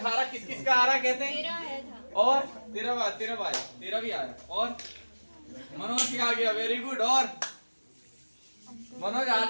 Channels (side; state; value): both; inverted; correlation -1.00